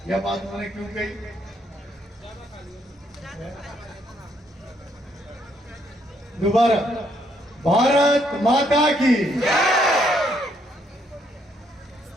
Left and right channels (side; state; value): both; normal; correlation 0.72